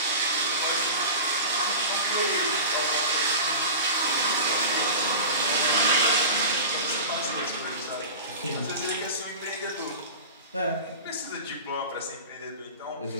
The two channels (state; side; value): inverted; both; correlation -0.31